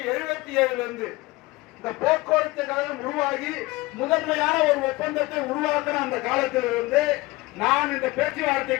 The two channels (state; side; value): quieter; right; 21.2 dB